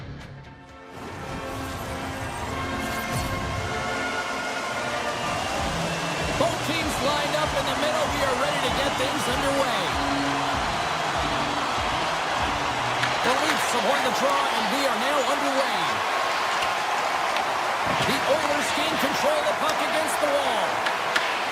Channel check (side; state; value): both; identical; correlation 1.00